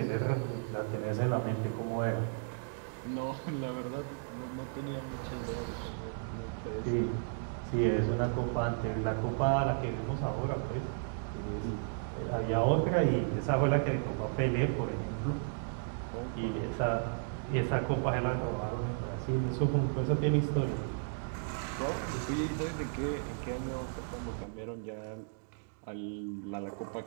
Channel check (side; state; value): left; silent; digital silence